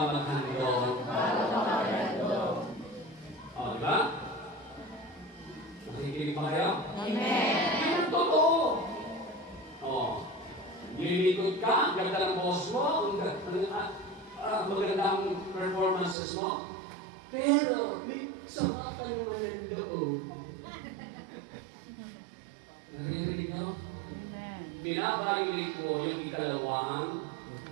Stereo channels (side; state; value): left; drops out; at 16.2 s